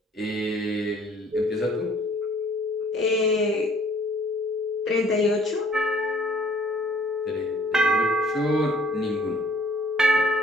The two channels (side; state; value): both; normal; correlation 0.58